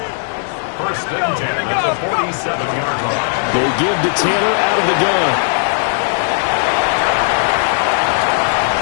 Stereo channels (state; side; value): silent; right; 69 dB below the other